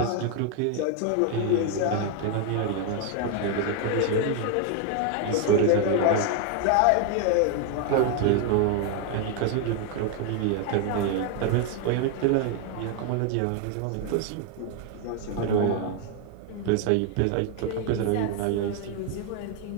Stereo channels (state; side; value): different; both; correlation 0.01